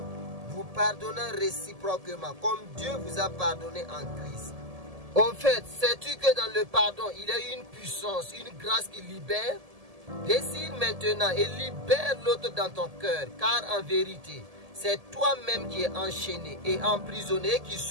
vous pardonnant réciproquement, comme Dieu vous a pardonné en Christ. Au fait, sais-tu que dans le pardon, il y a une puissance, une grâce qui libère? Décide maintenant et libère l'autre dans ton cœur, car en vérité, c'est toi-même qui es enchaîné et emprisonné qui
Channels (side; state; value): left; late; 1.7 ms